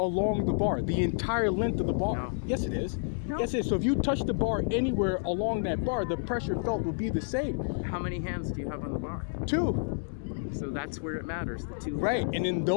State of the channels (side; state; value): right; silent; digital silence